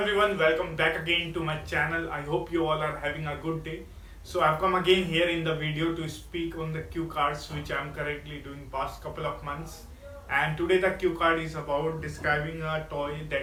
welcome back again to my channel. I hope you all are having a good day. So I've come again here in the video to speak on the cue cards which I'm currently doing past couple of months. And today the cue card is about describing a toy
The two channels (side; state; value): both; identical; correlation 1.00